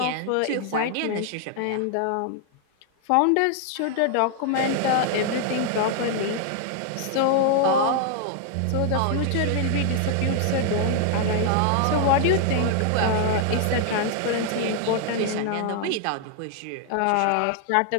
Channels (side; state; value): both; different; correlation 0.00